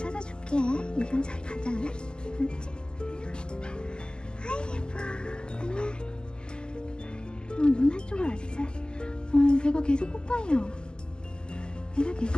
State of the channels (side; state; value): right; late; 0.047 ms